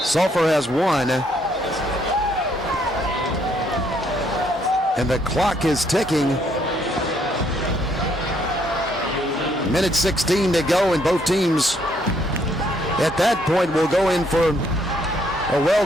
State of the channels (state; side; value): normal; both; correlation 0.70